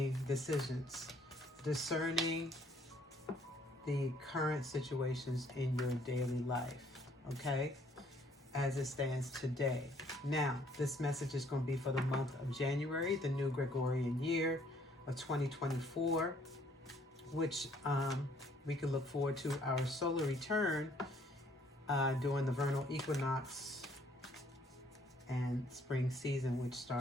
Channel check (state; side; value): normal; both; correlation 0.63